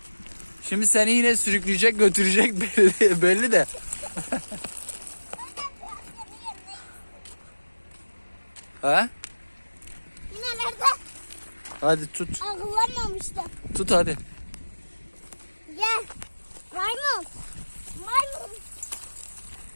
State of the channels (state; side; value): inverted; both; correlation -1.00